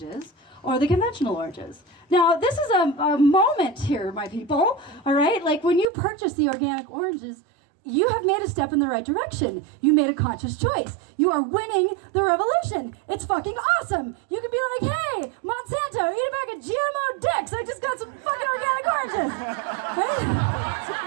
or the conventional oranges. Now, this is a moment here, my people, all right? Like when you purchase the organic oranges, you have made a step in the right direction. You made a conscious choice. You are winning the revolution. It's fucking awesome. You could be like, hey, Monsanto, eat a bag of GMO dicks. I just got some fucking organic oranges. Right?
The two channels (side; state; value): left; drops out; at 5.9 s